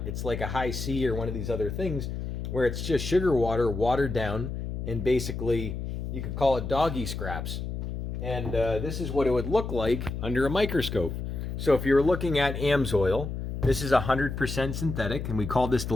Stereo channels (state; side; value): noise; left; hum, 5 dB below the sound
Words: It's like a high C or one of these other things where it's just sugar water watered down, and basically you could call it doggy scraps. And this is what it would look like under a microscope. So if you're looking at AMSOIL, this is 100% synthetic, and we call this the